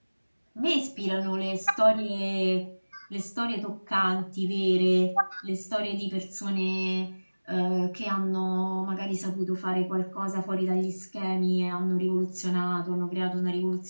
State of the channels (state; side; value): inverted; both; correlation -1.00